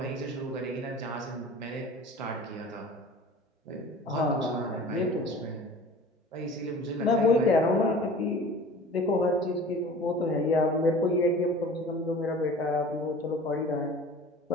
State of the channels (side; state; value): both; normal; correlation 0.42